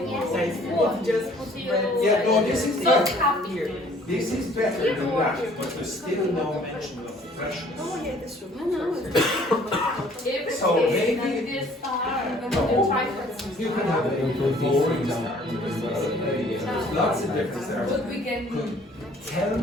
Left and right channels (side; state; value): both; normal; correlation 0.56